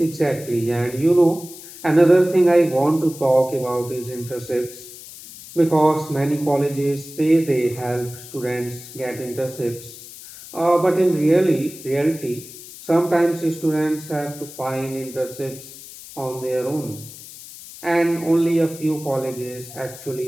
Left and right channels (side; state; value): left; noise; hiss, 16 dB below the sound